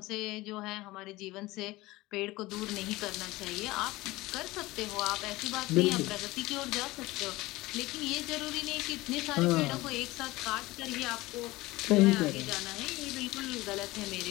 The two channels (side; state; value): right; quieter; 19.7 dB